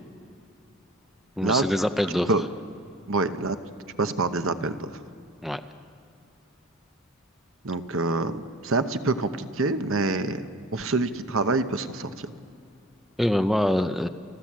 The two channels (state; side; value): normal; both; correlation 0.43